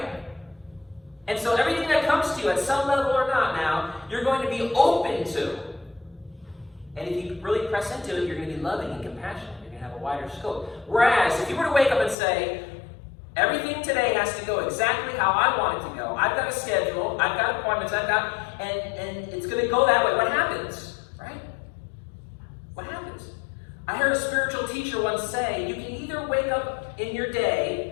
And so everything that comes to you at some level or not now, you're going to be open to. And if you really press into it, you're going to be loving and compassionate. You're going to have a wider scope. Whereas if you were to wake up and say, everything today has to go exactly how I want it to go. I've got a schedule. I've got appointments. and it's going to go that way. What happens? Right? What happens? I heard a spiritual teacher once say, you can either wake up in your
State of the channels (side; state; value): right; drops out; at 12.2 s